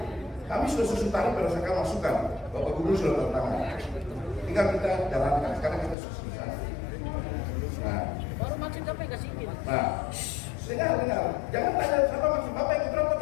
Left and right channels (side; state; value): right; drops out; at 6.0 s